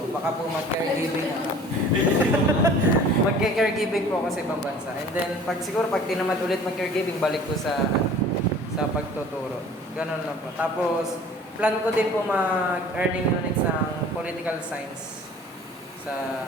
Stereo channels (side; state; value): both; normal; correlation 0.47